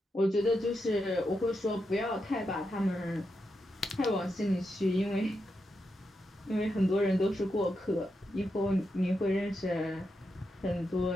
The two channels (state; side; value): normal; both; correlation 0.85